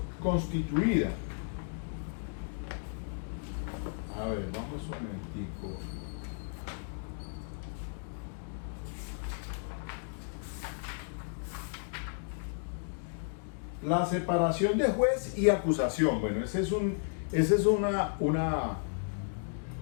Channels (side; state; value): right; silent; digital silence